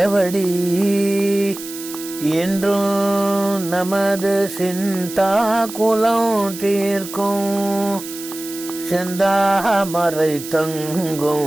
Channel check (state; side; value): noise; right; hiss, 12 dB below the sound